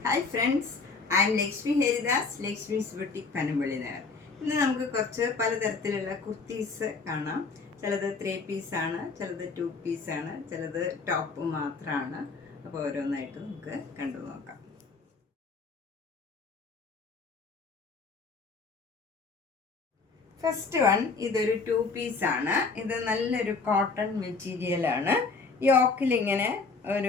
Hi friends, I M Lakshmi Haridas, Lakshmi's boutique Panampilly Nagar. ഇന്ന് നമുക്ക് കുറച്ച് പലതരത്തിലുള്ള കുർത്തീസ് കാണാം. ചിലത് 3 പീസാണ്, ചിലത് 2 പീസാണ്, ചിലത് ടോപ്പ് മാത്രമാണ്. അപ്പോൾ ഓരോന്നായിട്ട് നമുക്ക് കണ്ടു നോക്കാം. ഫസ്റ്റ് വൺ, ഇതൊരു 2 പീസാണ്. ഇത് നല്ലൊരു കോട്ടൺ മെറ്റീരിയലാണ്. യോക്കിലിങ്ങനെ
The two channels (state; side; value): quieter; right; 4.4 dB